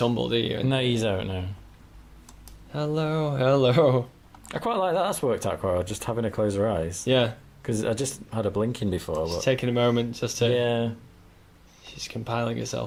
do you? No, you don't know. Hello, hello. I quite like that. That's worked out quite well. Just having her close her eyes. Yeah. Because I just had her blinking before. She's But taking a moment just to. yeah, She's compiling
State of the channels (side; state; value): both; identical; correlation 1.00